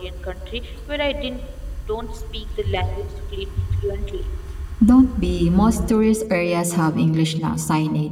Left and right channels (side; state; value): both; identical; correlation 1.00